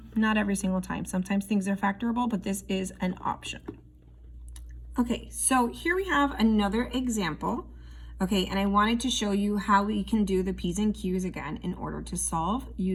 Not every single time. Sometimes things are factorable, but this is an option. Okay, so here we have another example. Okay, and I wanted to show you how we can do the P's and Q's again in order to solve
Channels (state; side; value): identical; both; correlation 1.00